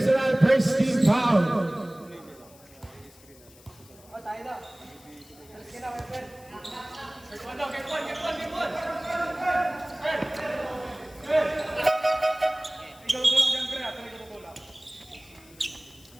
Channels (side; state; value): left; noise; hiss, 25 dB below the sound